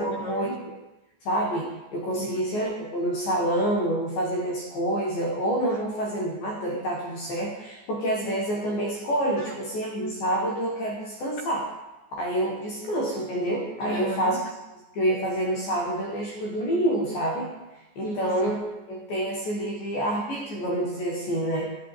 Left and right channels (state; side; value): late; right; 14 ms